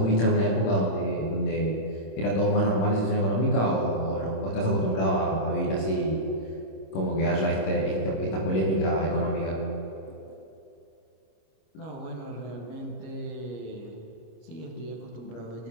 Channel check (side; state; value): right; late; 26 ms